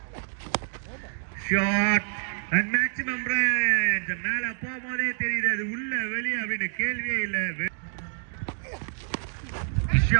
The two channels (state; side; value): silent; left; digital silence